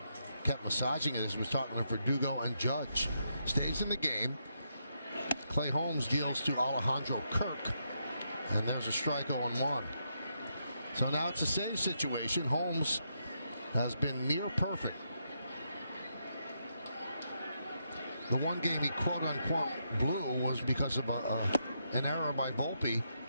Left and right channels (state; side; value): inverted; both; correlation -0.81